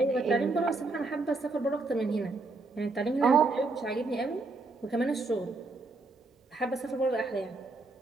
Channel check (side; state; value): left; quieter; 3.5 dB